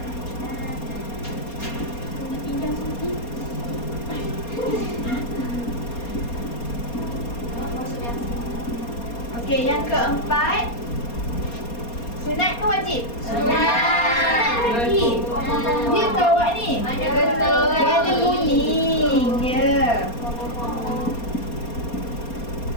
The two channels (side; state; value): right; late; 4.3 ms